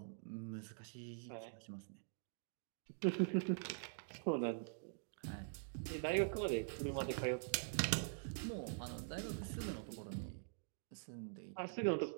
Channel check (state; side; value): silent; left; digital silence